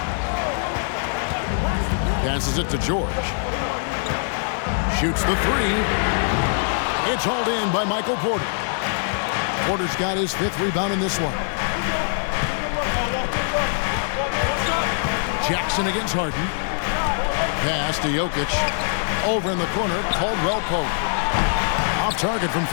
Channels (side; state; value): right; silent; digital silence